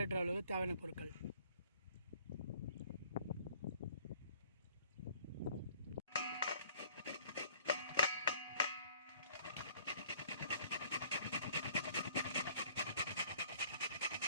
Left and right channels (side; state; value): both; inverted; correlation -0.57